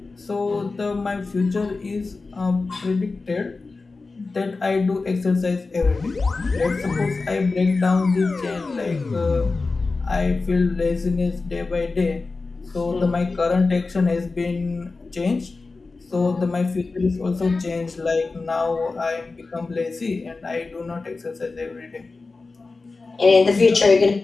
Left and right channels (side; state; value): right; quieter; 3.8 dB